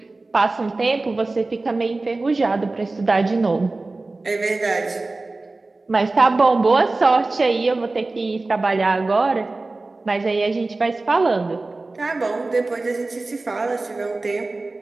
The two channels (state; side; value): quieter; left; 3.3 dB